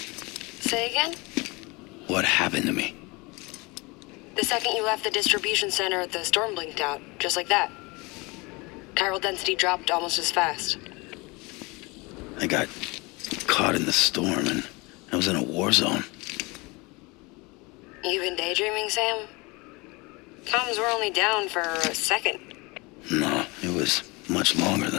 again? What happened to me? The second you left the distribution center, the storm blinked out, just like that. Chiral density dropped almost as fast. I got caught in the storm and I was in a war zone. You been daydreaming, Sam? Comms were only down for a second. No, it was much longer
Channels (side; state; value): right; quieter; 25.9 dB